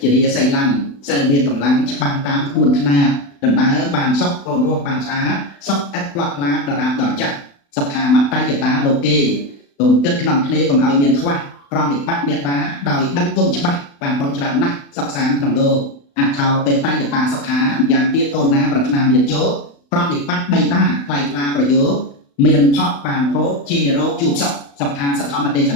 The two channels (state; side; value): late; right; 35 ms